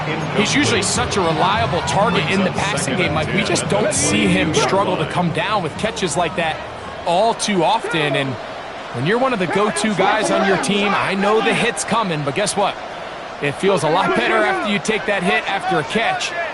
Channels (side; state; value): both; identical; correlation 1.00